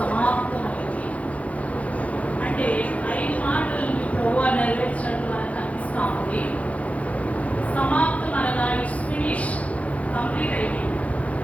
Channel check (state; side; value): late; right; 0.066 ms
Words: అంటే 5 మాటలను ప్రభువా నెరవేర్చినట్టు మనకు అనిపిస్తూ ఉంది. సమాప్తం అనగా ఇట్స్ ఫినిష్, కంప్లీట్ అయిపోయింది.